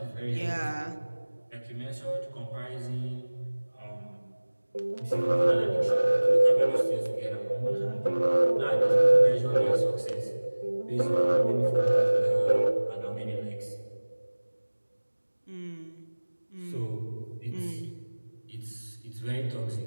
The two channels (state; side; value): inverted; both; correlation -1.00